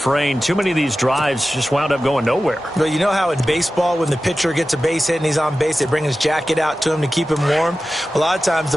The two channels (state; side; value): normal; both; correlation 0.94